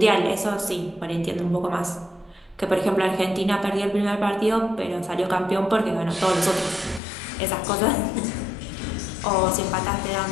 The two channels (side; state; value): right; drops out; at 7.0 s